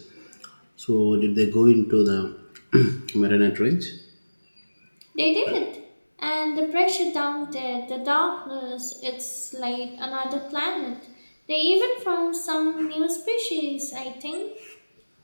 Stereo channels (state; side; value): inverted; both; correlation -1.00